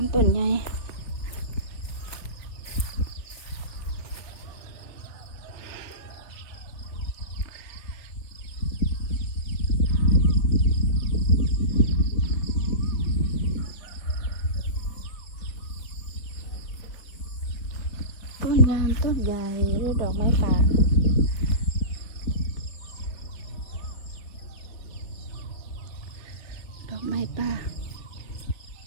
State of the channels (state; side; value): late; right; 4.2 ms